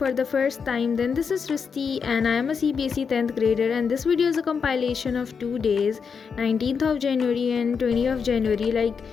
the first time, then this is Srishti and I am a CBSE 10th grader, and this video is a compilation of 2 days, 19th of January and 20th of January. Like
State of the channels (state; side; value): quieter; right; 6.0 dB